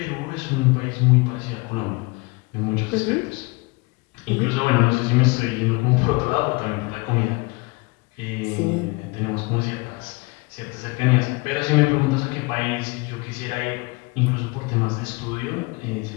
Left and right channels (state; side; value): quieter; right; 25.9 dB